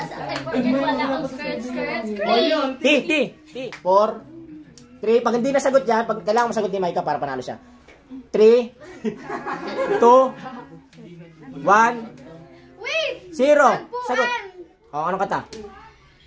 sa akin, forget wala akong skirt. T. 4, 3. Pag hindi nasagot yan, pag kailangan masagot ni Micah para panalo siya. 3, 2, 1, Wait! 0. Sagot. O, anong kanta?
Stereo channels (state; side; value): identical; both; correlation 1.00